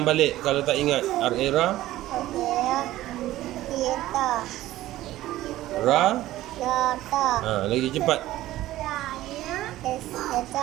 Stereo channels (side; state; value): left; quieter; 15.4 dB